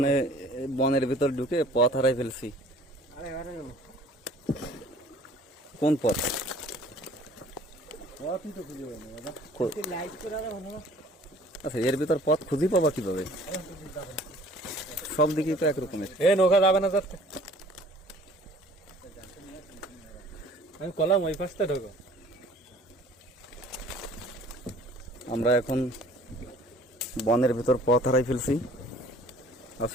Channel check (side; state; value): both; normal; correlation 0.52